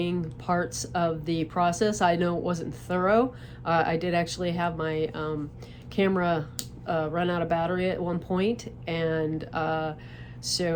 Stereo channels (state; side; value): identical; both; correlation 1.00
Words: parts of the process. I know it wasn't thorough. I did actually have my camera run out of battery at one point, and